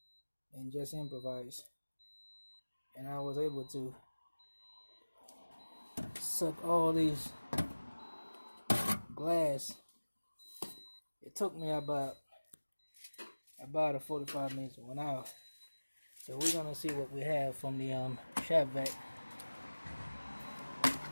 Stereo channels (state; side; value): inverted; both; correlation -1.00